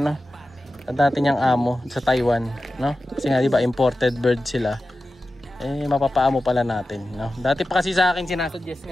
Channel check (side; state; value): both; normal; correlation 0.93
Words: Sa dati niyang amo sa Taiwan, no? Kasi nga 'di ba imported bird sila. Eh mapapaamo pala natin, no? Dati pa kasi sa akin sinasuggest